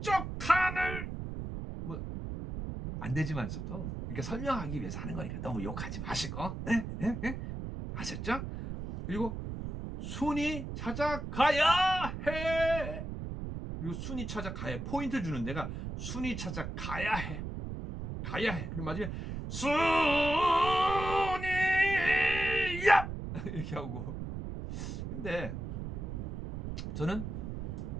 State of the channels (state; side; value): noise; right; rumble, 6 dB below the sound